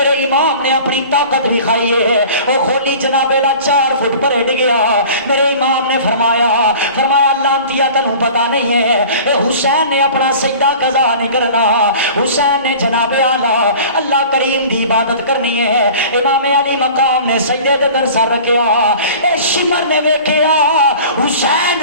امام نے اپنی طاقت دکھائی ہے او خولی جناب والا 4 فٹ پر ہٹ گیا میرے امام نے فرمایا لانتیا تنوں پتہ نہیں ہے اے حسین نے اپنا سجدہ قضا نہیں کرنا حسین نے جناب اعلیٰ اللہ کریم دی عبادت کرنی ہے امام علی مقام نے سجدے دے اندر سر رکھیا اے شمر نے ویکھیا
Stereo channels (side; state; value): both; inverted; correlation -0.42